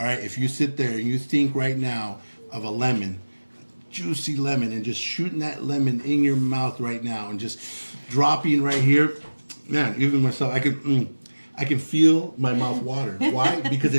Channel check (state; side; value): inverted; both; correlation -1.00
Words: right, if you sit there and you think right now of a lemon, juicy lemon, and just shooting that lemon in your mouth right now and just dropping right here, man, even myself, I can feel my mouth water. Why? Because